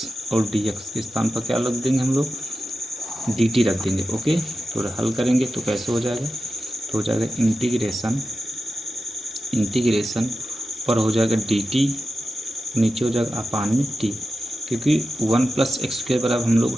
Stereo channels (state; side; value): normal; both; correlation 0.91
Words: और dx के स्थान पर क्या रख देंगे हम लोग? dt रख देंगे। ओके, तो हल करेंगे तो कैसे हो जाएगा? तो हो जाएगा इंटीग्रेशन पर हो जाएगा dt, नीचे हो जाएगा अपान में t, क्योंकि 1 प्लस एक्स स्क्वायर बराबर हम